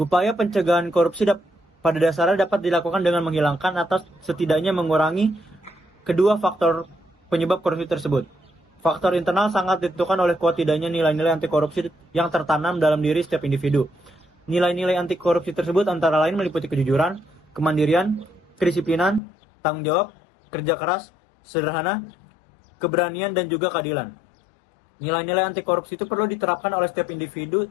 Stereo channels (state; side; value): drops out; right; at 19.2 s